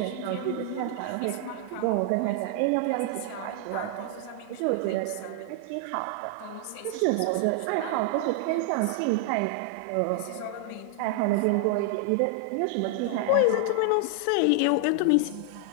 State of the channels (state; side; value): different; both; correlation 0.00